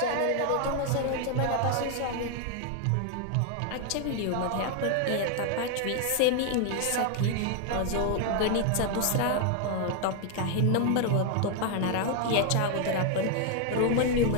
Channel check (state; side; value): different; both; correlation 0.00